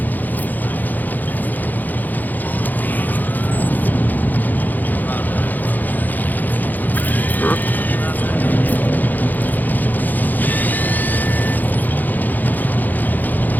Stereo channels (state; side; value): late; right; 0.084 ms